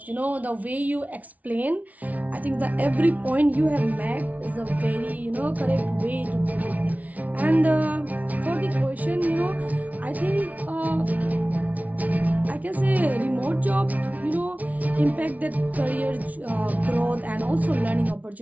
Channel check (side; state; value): left; late; 0.072 ms